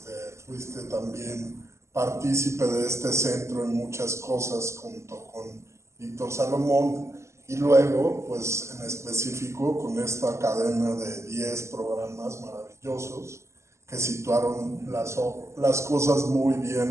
fuiste también partícipe de este centro en muchas cosas junto con Víctor Salomón, y luego, pues en específico, con esta cadena de 10 programas maravillosos que situaron las cosas muy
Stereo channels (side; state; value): left; late; 0.13 ms